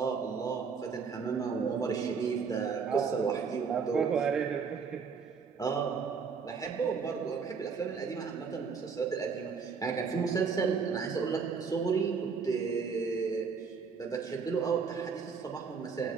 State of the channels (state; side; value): quieter; left; 5.6 dB